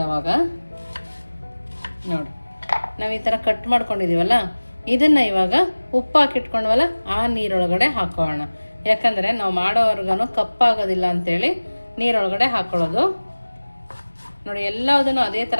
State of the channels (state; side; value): inverted; both; correlation -1.00